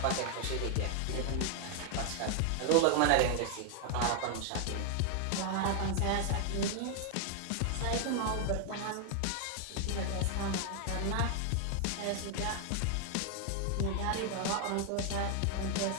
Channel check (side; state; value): both; different; correlation 0.00